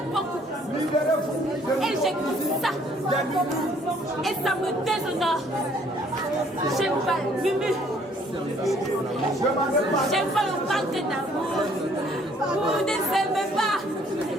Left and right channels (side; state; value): both; normal; correlation 0.61